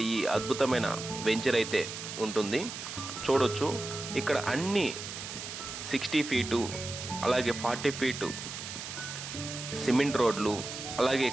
ఈ అద్భుతమైన వెంచర్ అయితే ఉంటుంది. చూడొచ్చు, ఇక్కడ అన్ని 60 ఫీటు అలాగే 40 ఫీటు సిమెంట్ రోడ్లు, అలాగే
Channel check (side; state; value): right; noise; hiss, 8 dB below the sound